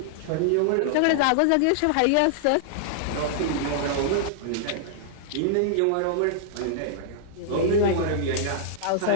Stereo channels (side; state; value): both; different; correlation -0.01